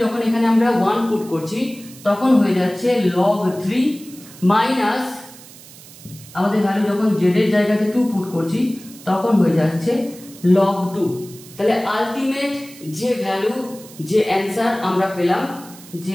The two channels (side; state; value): right; noise; hiss, 19 dB below the sound